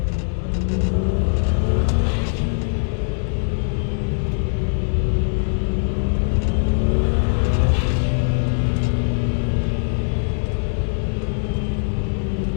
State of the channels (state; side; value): silent; right; 65 dB below the other